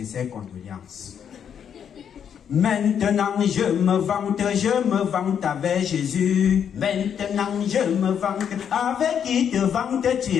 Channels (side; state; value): right; quieter; 8.2 dB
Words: condoléances. Maintenant je me vante avec Jésus. Maintenant je me vante, avec qui te vantes-tu?